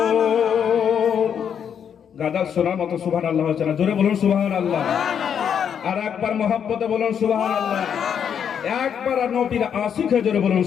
গাদা শোনার মতো সুবহানাল্লাহ হচ্ছে না? জোরে বলুন সুবহানাল্লাহ। আর একবার মহব্বতে বলুন সুবহানাল্লাহ। একবার নবীর আশিক জোরে বলুন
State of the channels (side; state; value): right; quieter; 8.0 dB